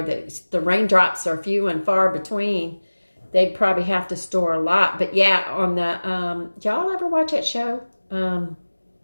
the raindrops are few and far between, they'd probably have to store a lot. But yeah, on the y'all ever watch that show?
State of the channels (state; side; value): inverted; both; correlation -1.00